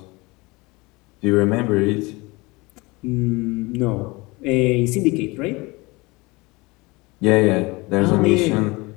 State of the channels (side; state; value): right; quieter; 24.2 dB